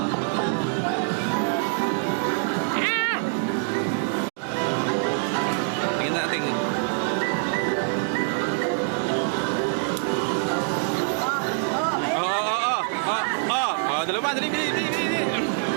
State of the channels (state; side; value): silent; left; 62 dB below the other